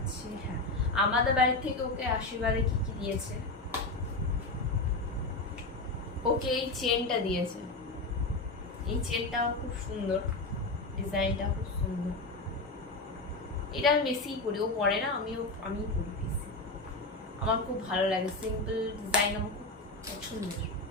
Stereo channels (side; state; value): right; quieter; 3.1 dB